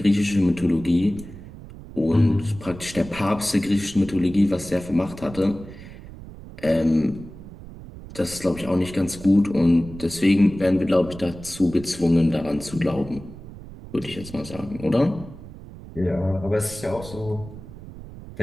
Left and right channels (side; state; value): right; noise; rumble, 15 dB below the sound